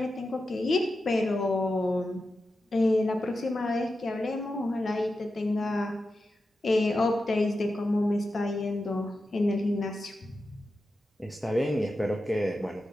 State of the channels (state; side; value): normal; both; correlation 0.90